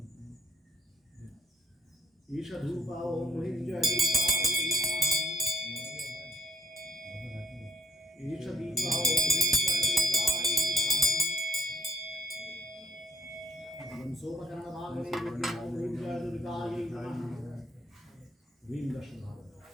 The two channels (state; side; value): normal; both; correlation 0.65